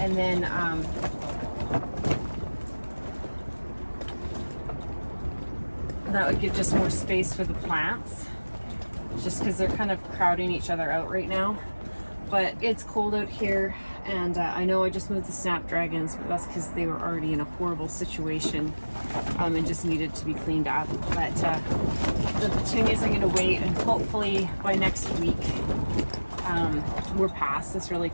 then that would give just more space for the plants, just because they're kind of crowding each other out right now. But it's cold out here, and I know I just moved the snapdragons, but that's because they were already in a horrible situation and just needed to be cleaned up. But the petunias I'm going to wait, and hopefully by next week we're past this really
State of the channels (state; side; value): inverted; both; correlation -1.00